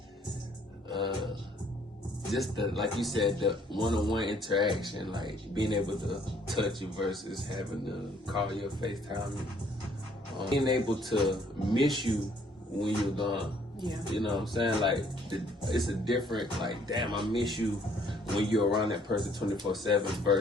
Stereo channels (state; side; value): normal; both; correlation 0.63